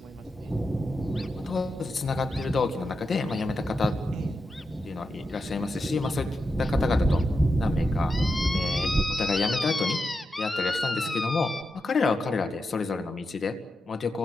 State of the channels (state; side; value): normal; both; correlation 0.88